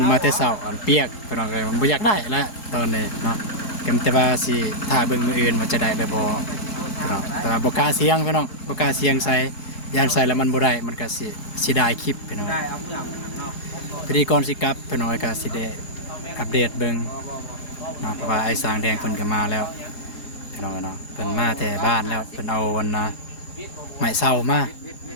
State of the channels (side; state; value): right; late; 3.7 ms